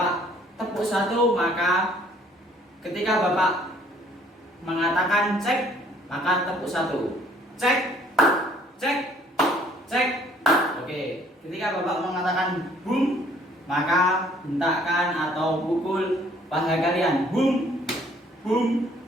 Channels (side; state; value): both; normal; correlation 0.59